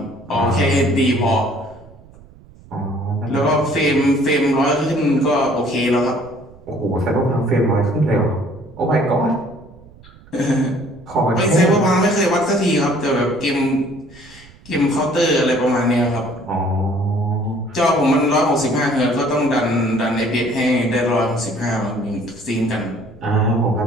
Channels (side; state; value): right; noise; rumble, 23 dB below the sound